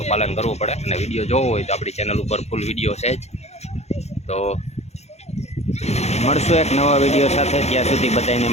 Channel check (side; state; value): right; late; 0.31 ms